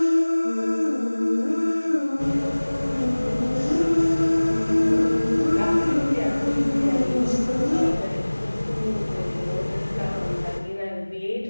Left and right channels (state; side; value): inverted; both; correlation -1.00